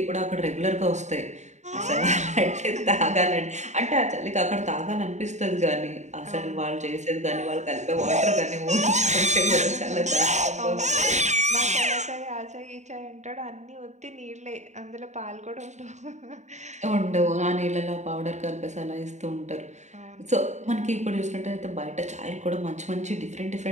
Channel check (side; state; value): left; late; 0.34 ms